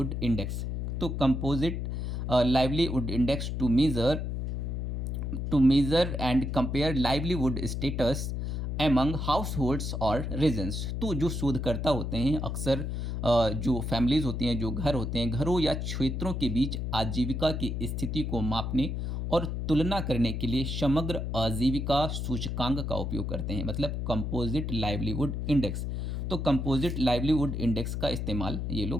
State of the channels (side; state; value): left; noise; hum, 2 dB below the sound